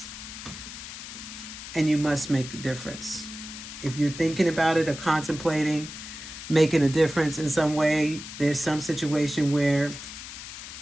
And you must make a difference. If you're thinking about it or contemplating making a difference in some way, there's some situation where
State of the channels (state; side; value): noise; left; hiss, 11 dB below the sound